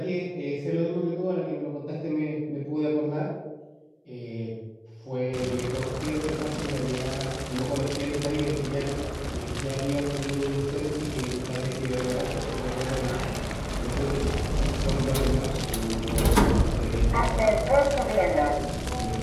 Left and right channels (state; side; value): identical; both; correlation 1.00